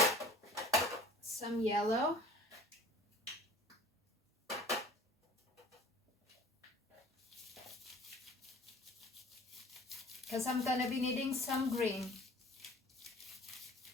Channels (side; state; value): both; normal; correlation 0.47